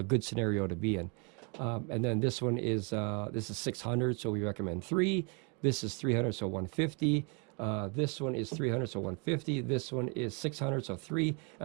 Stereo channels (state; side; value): quieter; left; 34.4 dB